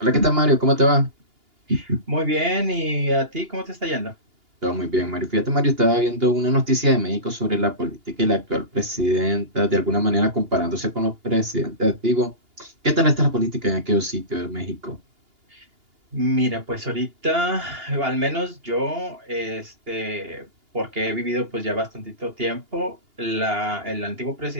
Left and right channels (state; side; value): late; left; 2.8 ms